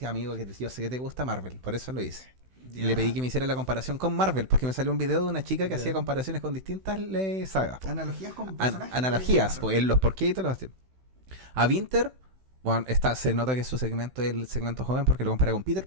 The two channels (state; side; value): late; left; 16 ms